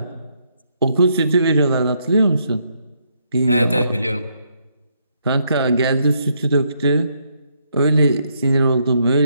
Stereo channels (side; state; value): both; inverted; correlation -0.74